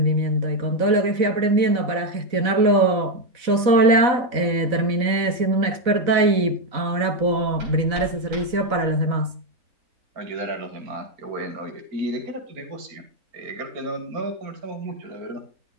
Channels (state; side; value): late; left; 4.0 ms